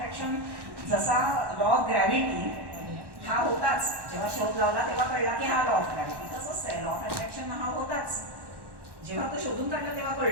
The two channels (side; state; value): left; late; 1.1 ms